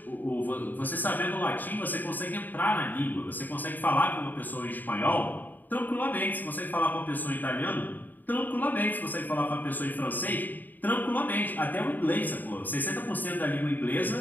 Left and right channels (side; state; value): right; late; 0.087 ms